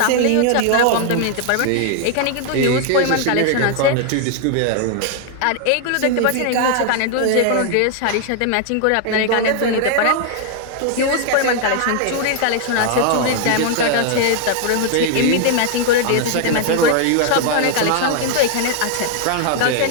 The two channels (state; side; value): different; both; correlation 0.00